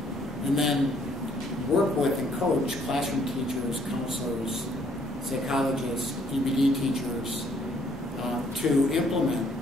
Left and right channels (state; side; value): normal; both; correlation 0.65